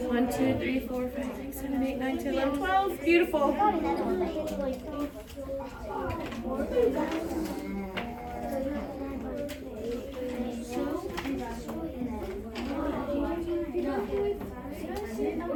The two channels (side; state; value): both; identical; correlation 1.00